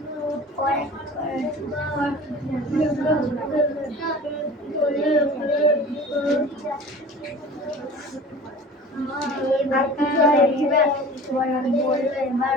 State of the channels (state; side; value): normal; both; correlation 0.41